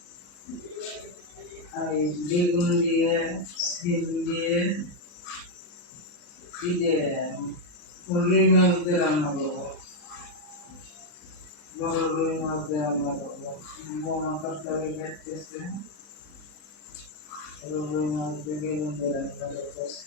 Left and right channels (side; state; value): right; late; 40 ms